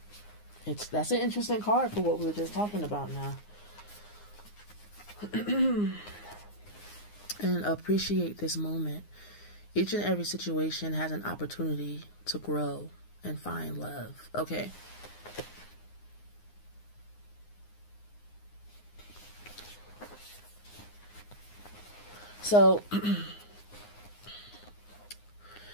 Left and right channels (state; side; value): late; right; 9.7 ms